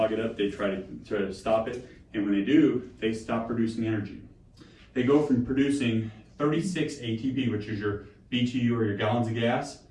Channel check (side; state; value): both; identical; correlation 1.00